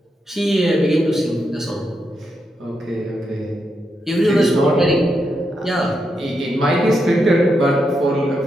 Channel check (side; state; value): both; normal; correlation 0.83